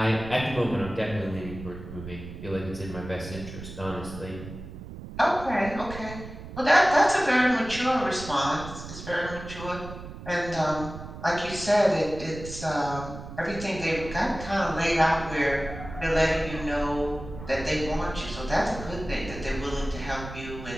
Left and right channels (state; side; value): noise; right; rumble, 12 dB below the sound